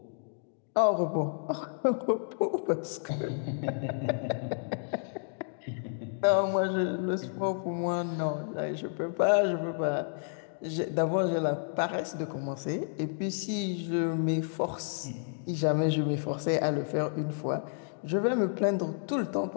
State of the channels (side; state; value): right; silent; digital silence